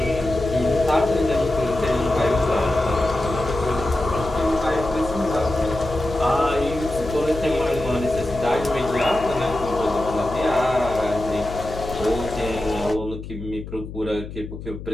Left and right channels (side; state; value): left; noise; hum, 11 dB below the sound